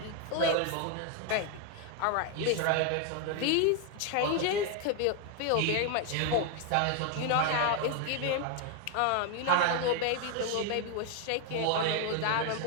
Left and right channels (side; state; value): both; different; correlation 0.01